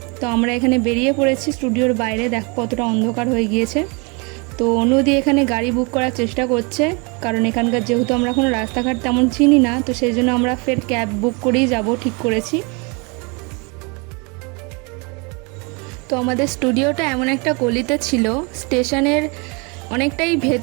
তো আমরা এখানে বেরিয়ে পড়েছি স্টুডিওর বাইরে, দেখো কতটা অন্ধকার হয়ে গিয়েছে। তো অনুদি এখানে গাড়ি বুক করার চেষ্টা করছে, কারণ এখানকার যেহেতু আমরা কোনো রাস্তাঘাট তেমন চিনি না, তো সেই জন্য আমরা ফের ক্যাব বুক করেই যাব ঠিক করেছি। তো আমাদের স্টুডিওটা এমন একটা গলিতে ছিল, স্টেশনের অনেকটাই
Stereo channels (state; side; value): quieter; left; 31.0 dB